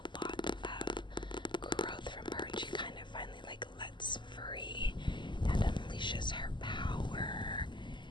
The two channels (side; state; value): right; late; 0.22 ms